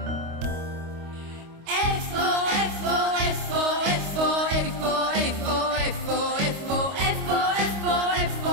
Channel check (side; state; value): left; late; 25 ms